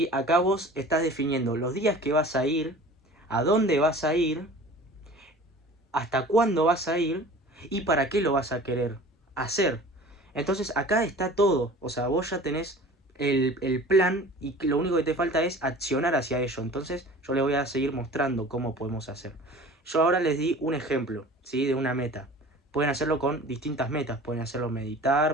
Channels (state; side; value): normal; both; correlation 0.42